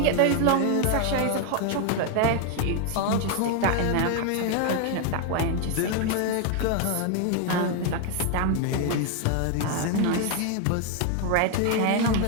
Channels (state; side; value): different; both; correlation 0.01